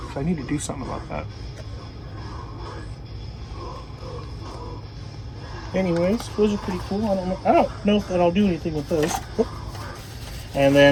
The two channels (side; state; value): both; identical; correlation 1.00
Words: I need to do something about that. Anyways, those are pretty cool. I don't know if that I'll do anything with those. Oop. And